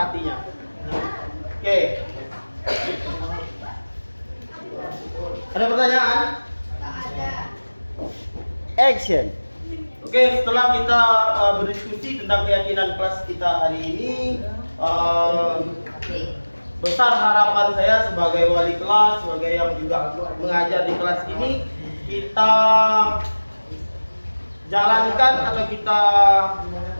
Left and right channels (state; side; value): inverted; both; correlation -1.00